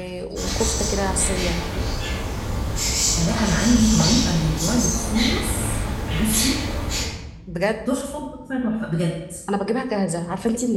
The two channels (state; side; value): identical; both; correlation 1.00